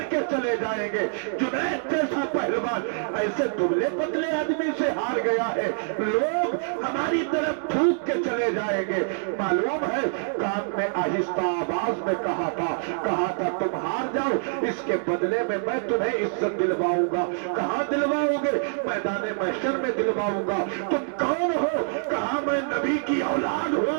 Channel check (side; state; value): left; silent; digital silence